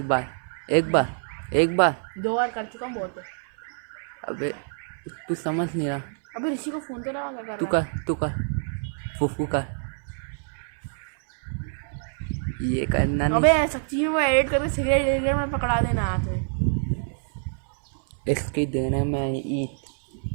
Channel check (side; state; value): left; silent; 61 dB below the other